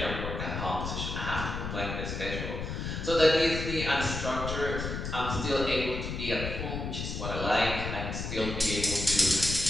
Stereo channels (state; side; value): noise; left; rumble, 4 dB below the sound